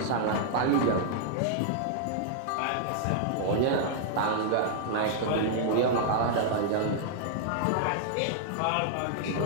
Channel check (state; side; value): different; both; correlation -0.01